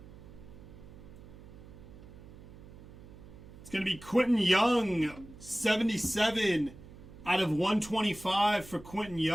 It's going to be Quentin Young, 77 out of 125 for Quentin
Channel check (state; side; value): noise; right; hum, 18 dB below the sound